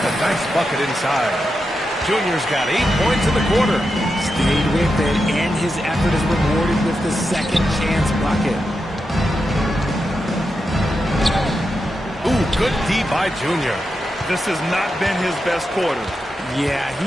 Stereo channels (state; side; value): normal; both; correlation 0.88